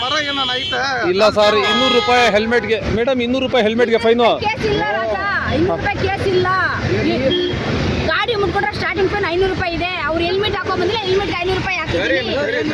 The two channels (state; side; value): identical; both; correlation 1.00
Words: ಮರ ಏನಾನ ಐತೆ? ಇಲ್ಲ ಸರ್, 200 ರೂಪಾಯಿ ಹೆಲ್ಮೆಟ್ಗೆ. ಮೇಡಮ್ 200 ರೂಪಾಯಿ ಹೆಲ್ಮೆಟ್ಗೆ ಫೈನು. ಕೇಸ್ ಇಲ್ಲ ರಾಜ, 200 ರೂಪಾಯಿ ಕೇಸ್ ಇಲ್ಲ. ಗಾಡಿ ಮುಟ್ಕೊಂಡ್ರೆ ಸ್ಟಾರ್ಟಿಂಗ್ ಫೈನ್ 500 ರೂಪಾಯಿ ಇದೆ. ಅವ್ರು ಹೆಲ್ಮೆಟ್ ಹಾಕೊಂಡ್ ಬಂದ್ರೆ ಹೆಲ್ಮೆಟ್ 500 ರೂಪಾಯಿ ಹಾಕಿದ್ರಿ.